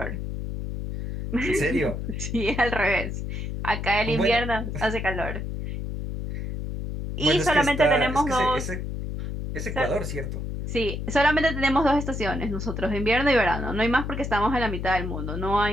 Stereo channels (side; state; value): left; noise; hum, 5 dB below the sound